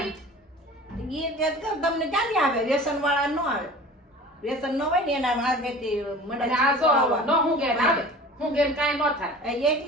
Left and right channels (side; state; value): both; normal; correlation 0.41